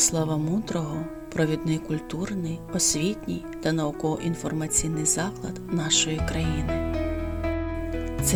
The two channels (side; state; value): both; identical; correlation 1.00